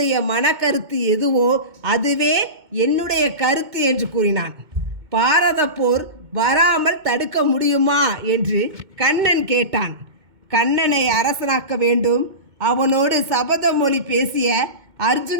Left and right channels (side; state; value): left; late; 2.2 ms